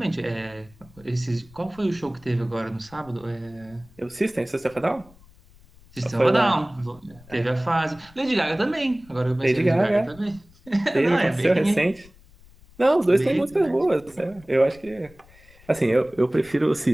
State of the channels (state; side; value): noise; left; rumble, 25 dB below the sound